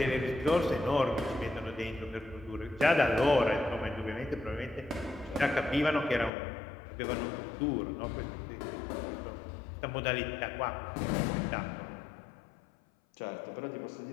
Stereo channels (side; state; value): right; drops out; at 6.3 s